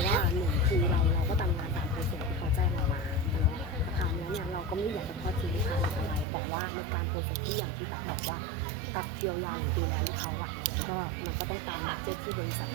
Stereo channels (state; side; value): drops out; left; at 6.2 s